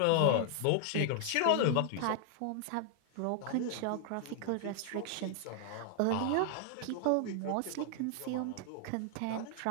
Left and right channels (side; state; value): both; different; correlation 0.00